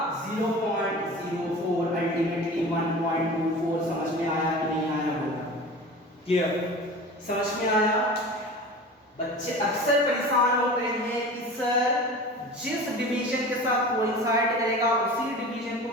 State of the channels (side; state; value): both; normal; correlation 0.36